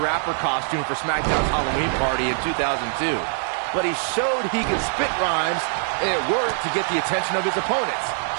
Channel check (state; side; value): silent; left; 63 dB below the other